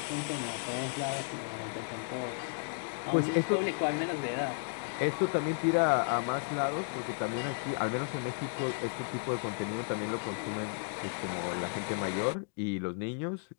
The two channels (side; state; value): right; silent; digital silence